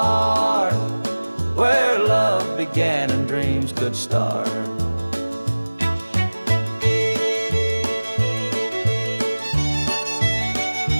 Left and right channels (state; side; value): inverted; both; correlation -1.00